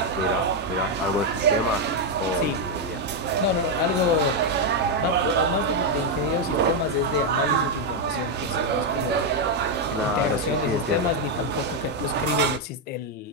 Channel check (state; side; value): normal; both; correlation 0.01